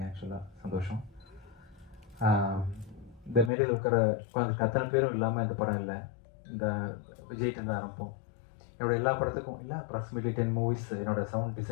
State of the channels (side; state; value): right; drops out; at 3.5 s